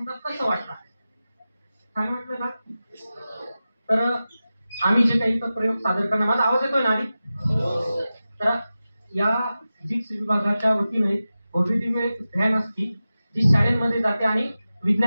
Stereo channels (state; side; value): inverted; both; correlation -0.94